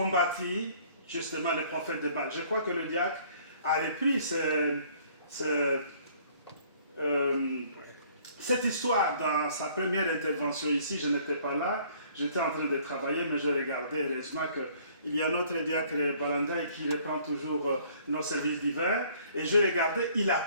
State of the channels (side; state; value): both; inverted; correlation -0.58